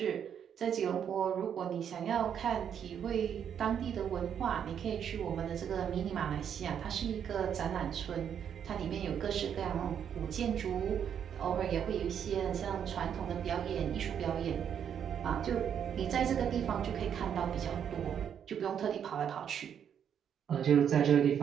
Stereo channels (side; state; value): left; quieter; 8.5 dB